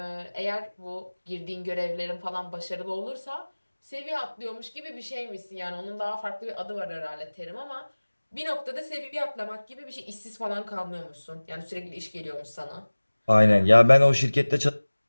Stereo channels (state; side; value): inverted; both; correlation -1.00